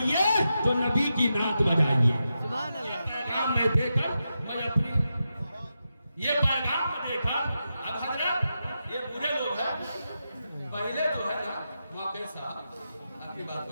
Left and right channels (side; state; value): both; inverted; correlation -0.88